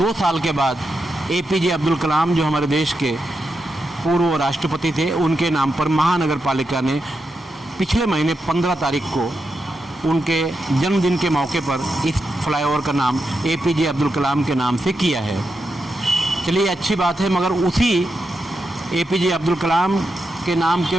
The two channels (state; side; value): normal; both; correlation 0.86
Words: साल के बाद APJ अब्दुल कलाम, जो हमारे देश के पूर्व राष्ट्रपति थे, उनके नाम पर महानगर पालिका ने पिछले महीने 15 तारीख को उनके जन्मदिन के मौके पर इस फ्लाईओवर का नाम APJ अब्दुल कलाम के नाम से किया है। चलिए अच्छी बात है, मगर उसी APJ अब्दुल कलाम के नाम